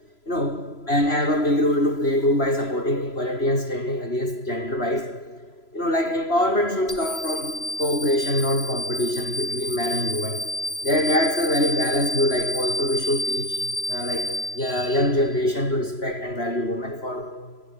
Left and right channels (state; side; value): late; right; 3.0 ms